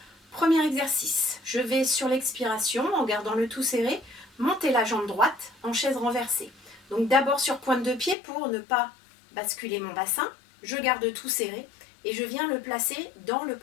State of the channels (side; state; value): right; drops out; at 8.2 s